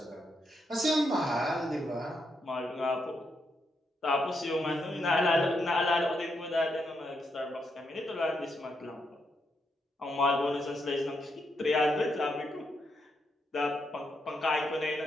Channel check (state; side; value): normal; both; correlation 0.80